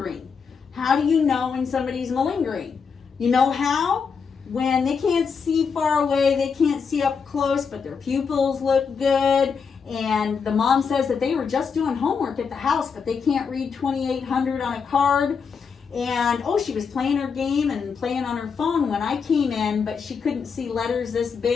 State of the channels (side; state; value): right; quieter; 5.9 dB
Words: How do you know when somebody's malingering? You know how? When they can't see far away, they can't see up close, but their pupils look good. And the mom says that they were just doing homework at the house, but they can't read 2800 on a card. And, she was playing her game and playing on her phone when I came in, but she couldn't see letters this